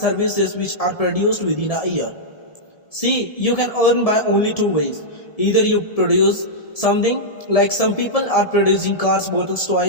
which are produced within a year. See, you can earn by only two ways. Either you produce something, like some people are producing cars, bottles,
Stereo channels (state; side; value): late; right; 1.7 ms